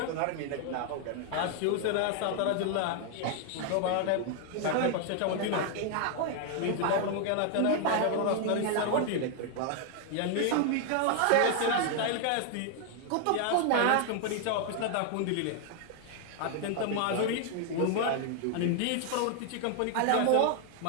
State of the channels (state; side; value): different; both; correlation 0.00